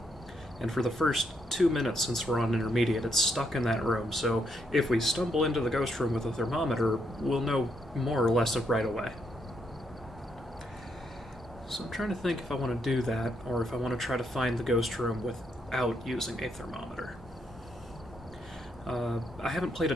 And for the first 2 minutes, since we're on intermediate, it's stuck in that room. So if we stumble into the ghost room with a thermometer, we'll know more or less right away. So I'm trying to think if I want to do that, or if I want to try to find the ghost room without using a thermometer. I haven't played a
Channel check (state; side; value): normal; both; correlation 0.77